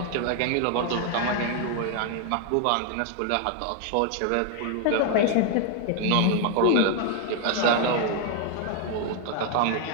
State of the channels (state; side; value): different; both; correlation 0.01